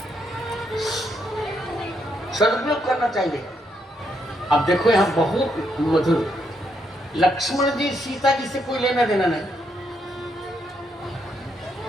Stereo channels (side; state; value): both; normal; correlation 0.77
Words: सदुपयोग करना चाहिए। अब देखो यहाँ बहुत मधुर, लक्ष्मण जी सीता जी से कोई लेना देना नहीं,